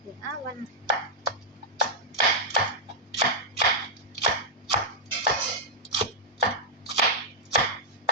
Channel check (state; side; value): normal; both; correlation -0.07